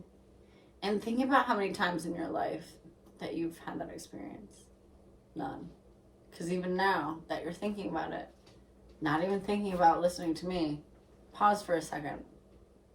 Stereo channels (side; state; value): both; identical; correlation 1.00